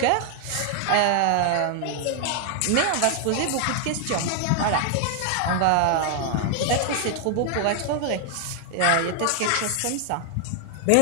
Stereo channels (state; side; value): different; both; correlation 0.00